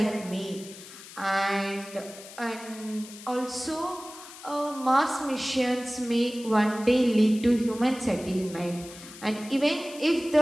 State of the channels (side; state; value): left; noise; hiss, 16 dB below the sound